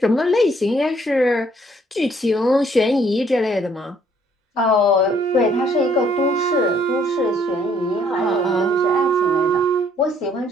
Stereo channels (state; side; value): normal; both; correlation 0.64